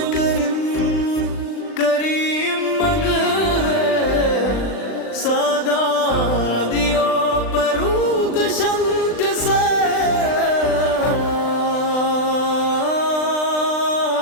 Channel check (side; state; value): right; late; 39 ms